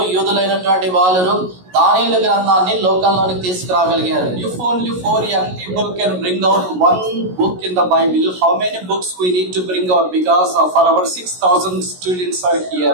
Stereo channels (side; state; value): left; late; 16 ms